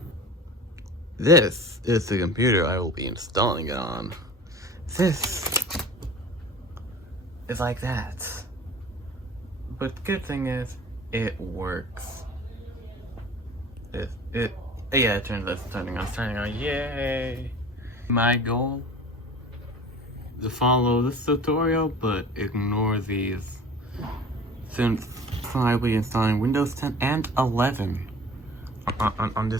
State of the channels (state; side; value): normal; both; correlation 0.42